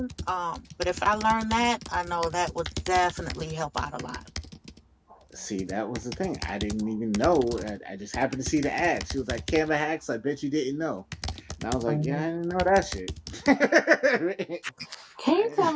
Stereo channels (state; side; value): identical; both; correlation 1.00